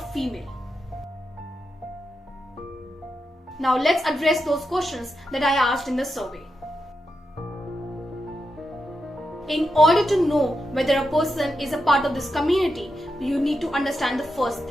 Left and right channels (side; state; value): both; normal; correlation 0.87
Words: female. Now let's address those questions that I asked in the survey. In order to know whether a person is a part of this community, you need to understand the first